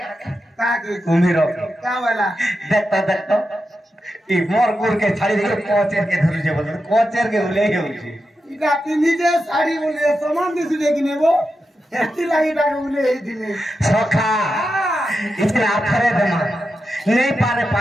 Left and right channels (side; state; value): both; normal; correlation 0.89